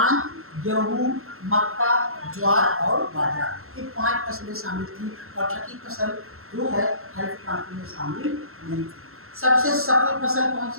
गेहूं, मक्का, ज्वार और बाजरा, ये 5 फसलें शामिल थी और छठी फसल जो है हरित क्रांति में शामिल नहीं थी। सबसे सफल फसल कौन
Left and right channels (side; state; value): left; late; 0.62 ms